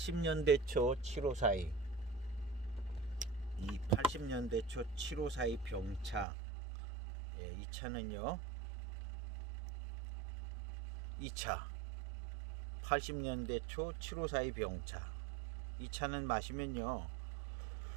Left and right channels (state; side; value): drops out; left; at 6.2 s